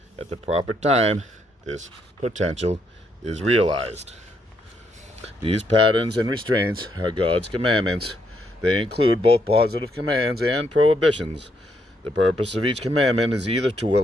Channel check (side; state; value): both; normal; correlation 0.75